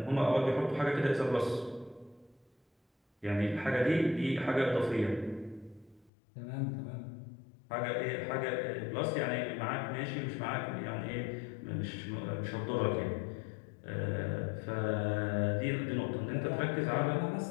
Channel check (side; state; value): right; drops out; at 6.1 s